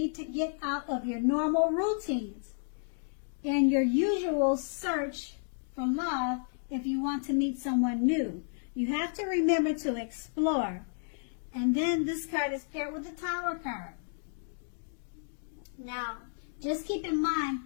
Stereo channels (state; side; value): silent; right; digital silence